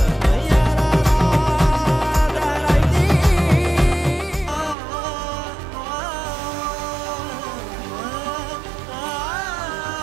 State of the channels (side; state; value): left; drops out; at 4.8 s